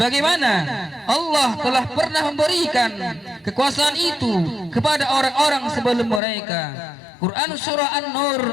Allah telah pernah memberikan kekuasaan itu kepada orang-orang sebelum mereka. Quran surah An-Nur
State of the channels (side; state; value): right; drops out; at 6.2 s